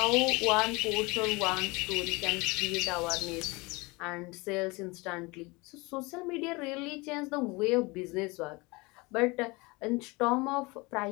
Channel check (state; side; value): quieter; right; 25.3 dB